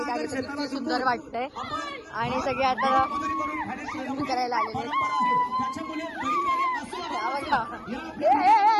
आली तर किती सुंदर वाटतंय आणि सगळे आता स्विमिंग करायला आलेले.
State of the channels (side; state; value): both; identical; correlation 1.00